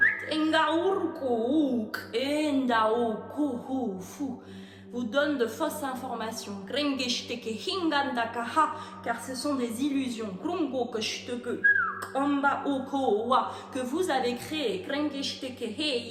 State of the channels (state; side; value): identical; both; correlation 1.00